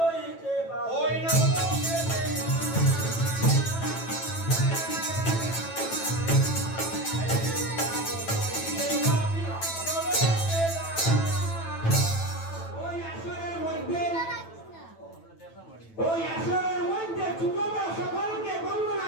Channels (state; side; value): late; right; 9.1 ms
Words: ওই আসরের মধ্যে ছোট বড় সকলকে